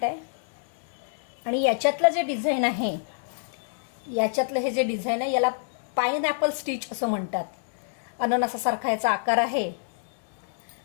आहे आणि याच्यातलं जे डिझाईन आहे, याच्यातलं हे जे डिझाईन आहे याला पाइनएपल स्टिच असं म्हणतात. अननसासारखा याचा आकार आहे.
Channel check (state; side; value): silent; right; digital silence